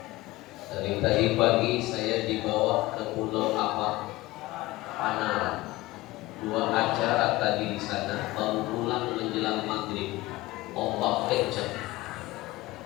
Dari tadi pagi saya dibawa ke pulau Panara. 2 acara tadi di sana, baru pulang menjelang maghrib. Ombak kencang.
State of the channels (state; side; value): quieter; right; 19.2 dB